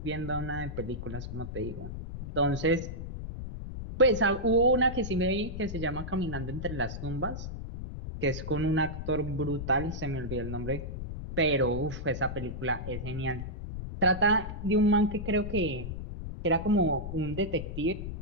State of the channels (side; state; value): left; noise; rumble, 7 dB below the sound